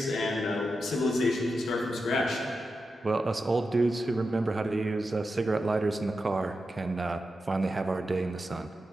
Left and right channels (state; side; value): normal; both; correlation 0.89